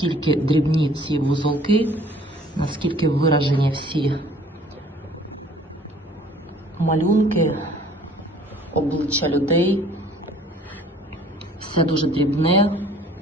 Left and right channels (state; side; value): normal; both; correlation 0.54